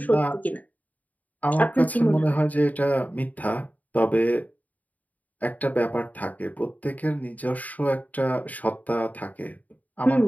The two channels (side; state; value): right; late; 0.075 ms